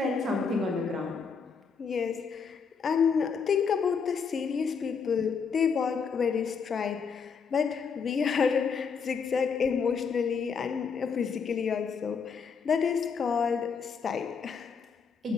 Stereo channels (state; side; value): quieter; right; 5.9 dB